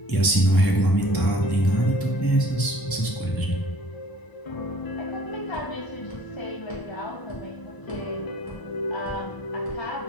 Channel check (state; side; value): late; right; 1.0 ms